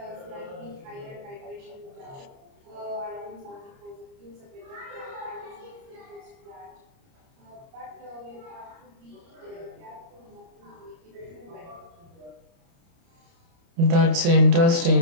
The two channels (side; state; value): left; late; 29 ms